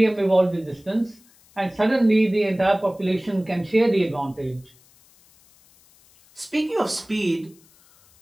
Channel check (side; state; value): left; noise; hiss, 30 dB below the sound